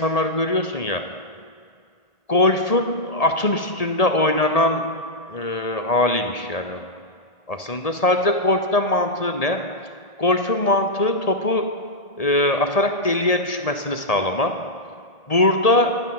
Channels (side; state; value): right; late; 1.8 ms